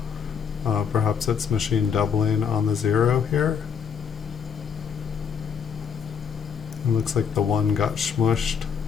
Perhaps it's machine doubling on the 0 here. It looks like the 1 got smushed.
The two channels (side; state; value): right; quieter; 6.8 dB